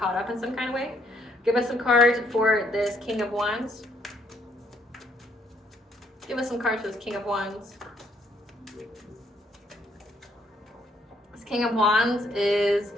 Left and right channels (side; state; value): both; normal; correlation 0.69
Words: up in some kind of way. Give us some cards for this King of Wands. Give us some cards for this King of Wands. This King of Wands is